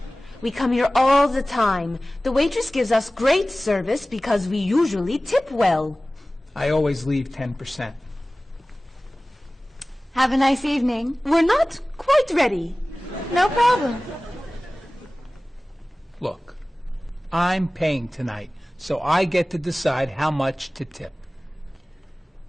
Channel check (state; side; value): normal; both; correlation 0.98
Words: we come here all the time. The waitress gives us great service because we usually tip well. I always leave 10%. Have a nice evening. We're not quite ready. No problem. Look, I'm paying tonight, so I get to decide how much to tip.